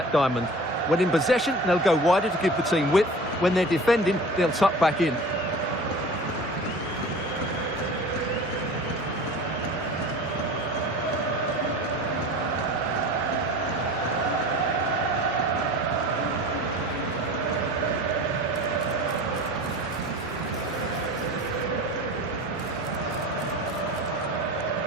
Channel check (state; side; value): normal; both; correlation 0.39